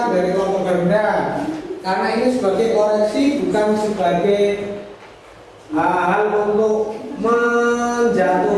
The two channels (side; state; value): both; identical; correlation 1.00